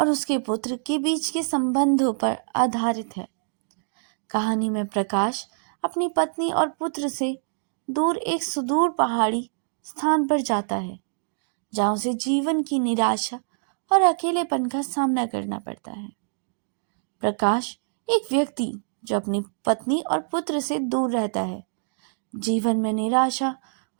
उसके पुत्र के बीच के संबंधों पर आधारित है। कहानी में प्रकाश अपनी पत्नी और पुत्र से दूर एक सुदूर पहाड़ी स्थान पर जाता है, जहाँ उसे जीवन की निराशा और अकेलेपन का सामना करना पड़ता है। प्रकाश एक व्यक्ति जो अपनी पत्नी और पुत्र से दूर रहता है, जीवन में निराशा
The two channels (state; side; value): silent; left; digital silence